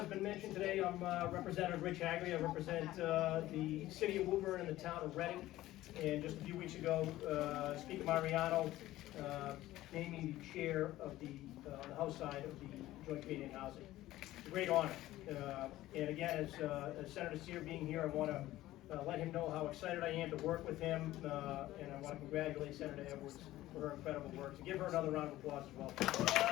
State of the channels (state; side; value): quieter; right; 15.7 dB